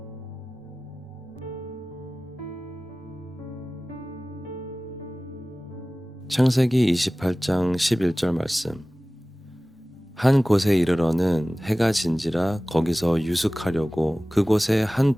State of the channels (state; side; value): normal; both; correlation 0.97